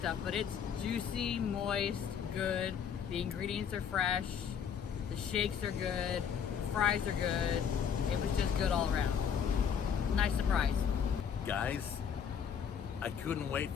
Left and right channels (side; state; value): right; quieter; 7.6 dB